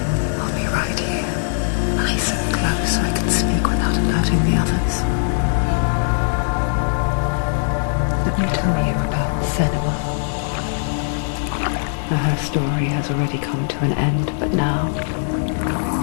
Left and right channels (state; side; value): silent; right; digital silence